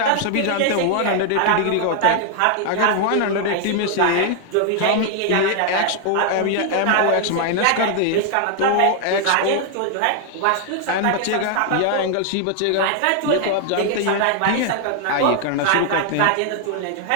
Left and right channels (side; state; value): both; different; correlation 0.00